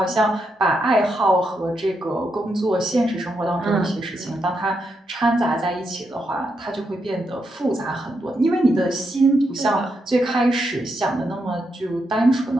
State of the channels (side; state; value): both; normal; correlation 0.82